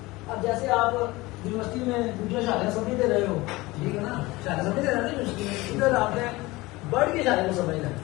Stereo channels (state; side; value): quieter; right; 21.0 dB